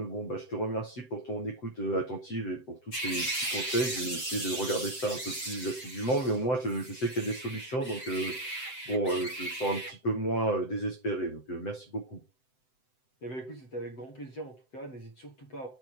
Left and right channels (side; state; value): right; late; 7.8 ms